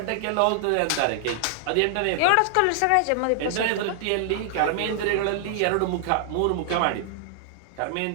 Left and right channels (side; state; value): both; different; correlation 0.00